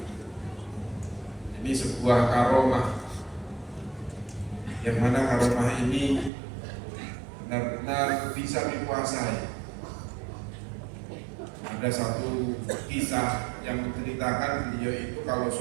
Ini sebuah karomah, yang mana karomah ini benar-benar bisa dikuasai. Ada satu kisah yang menceritakan beliau itu kalau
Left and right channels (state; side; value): drops out; left; at 6.3 s